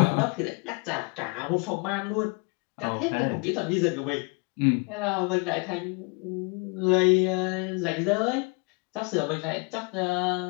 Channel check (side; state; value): right; quieter; 31.6 dB